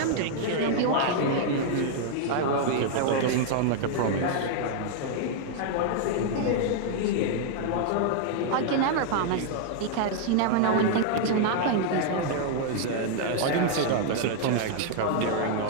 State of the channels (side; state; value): both; different; correlation 0.00